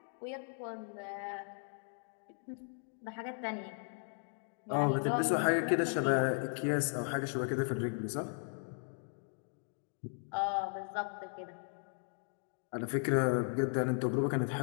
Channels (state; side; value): silent; right; 53 dB below the other